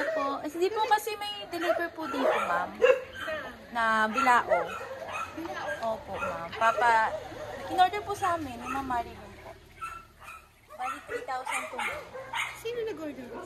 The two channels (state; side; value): identical; both; correlation 1.00